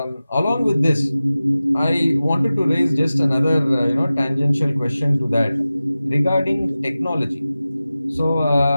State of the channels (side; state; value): both; inverted; correlation -0.96